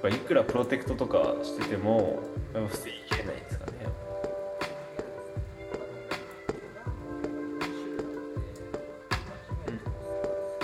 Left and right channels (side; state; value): both; identical; correlation 1.00